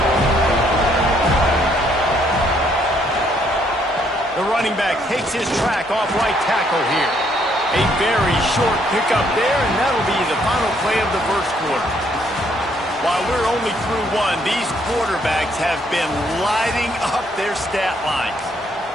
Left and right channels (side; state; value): both; normal; correlation 0.69